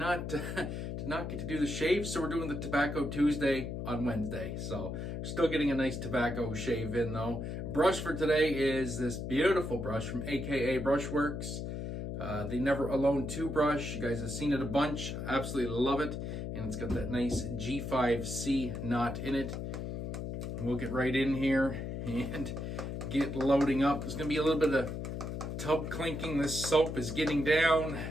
get to do the shave. So we're doing the Tobacco Tuesday on Wednesday. So still getting a nice tobacco shave in though. Brush for today is this beautiful brush from AKA Brushworx. The Never Alone 2 brush. You guys have seen it a bunch. Absolutely love it. And it's got that nice G5C knot in it. And we'll get right in here and get loading up. There's going to be a little bit of tub clinking. This soap is getting down.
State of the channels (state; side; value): noise; left; hum, 5 dB below the sound